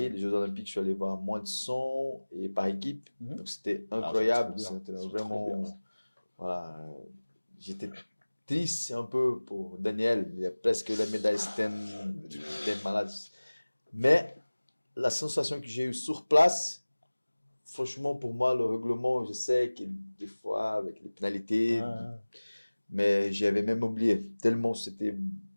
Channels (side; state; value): both; inverted; correlation -1.00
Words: les Jeux Olympiques, je suis allé voir moins de 100 et par équipe. Mhm. Donc, c'était Ah, incroyable. c'est trop bien. C'était C'est trop vraiment. bien. Voilà. J'étais triste un peu pour Daniel. Il a presque la médaille, c'était des malades. Mais la sensation que j'ai eue sur place, franchement, pour moi, le règlement, je sais que des fois, avec les pénalités, Ouais. mais j'avais même oublié. Tellement c'était